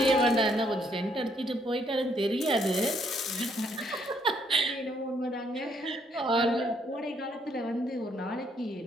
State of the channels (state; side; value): normal; both; correlation 0.70